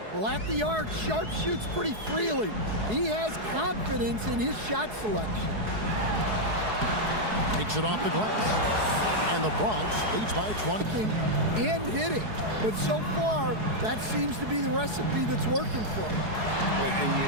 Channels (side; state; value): left; late; 4.7 ms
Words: Well, at the arc, Sharp shoots pretty freely. He has confidence in his shot selection. Takes it off the glass. And the Bronx leads by 20. And hitting. But so far, that seems to be the recipe that's working for him. And you